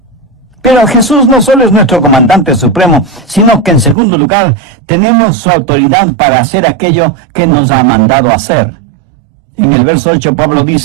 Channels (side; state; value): left; drops out; at 4.0 s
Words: Pero Jesús no solo es nuestro comandante supremo, sino que en segundo lugar tenemos su autoridad para hacer aquello que nos ha mandado hacer. En el verso 8 Pablo